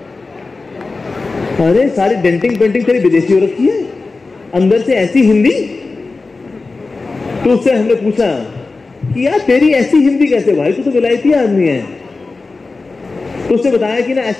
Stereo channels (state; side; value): quieter; right; 3.8 dB